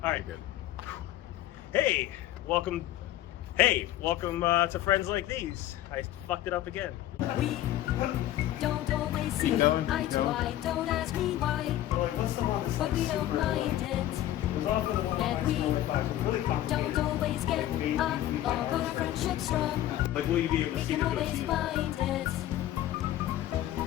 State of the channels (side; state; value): right; quieter; 13.6 dB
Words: All right. Good. Hey, welcome to Friends Like These. I fucked it up again. We don't always see eye to eye. Don't ask me why, but we don't mind it. And we don't always get on, but our friendship's strong. Like, will you be able We to see can the always goatee? find it.